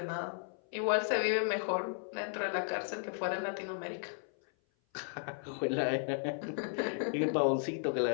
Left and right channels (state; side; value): silent; right; 55 dB below the other